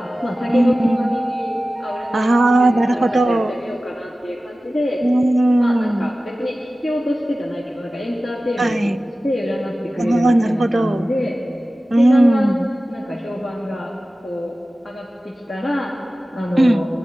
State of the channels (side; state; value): both; normal; correlation 0.96